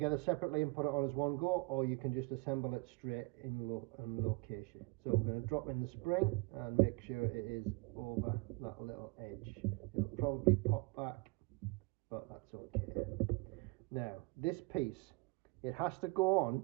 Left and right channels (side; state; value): left; quieter; 26.6 dB